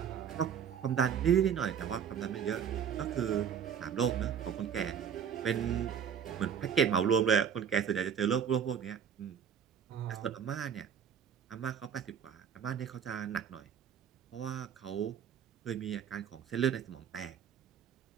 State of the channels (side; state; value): left; quieter; 8.1 dB